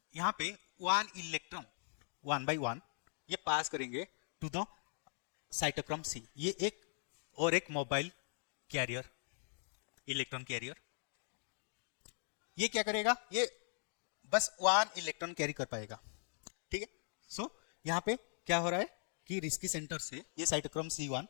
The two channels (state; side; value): silent; right; digital silence